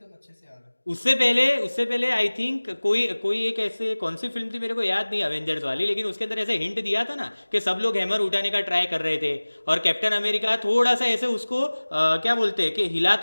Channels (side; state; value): both; inverted; correlation -1.00